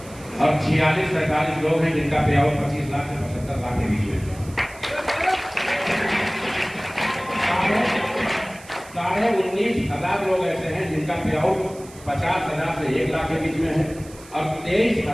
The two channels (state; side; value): noise; right; hiss, 21 dB below the sound